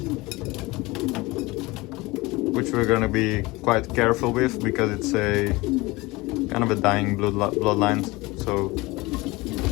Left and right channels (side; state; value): right; quieter; 22.1 dB